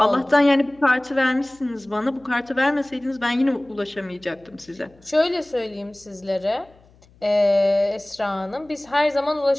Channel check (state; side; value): noise; left; hum, 29 dB below the sound